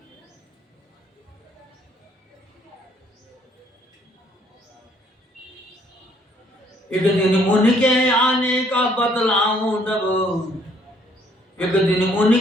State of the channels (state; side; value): normal; both; correlation 0.65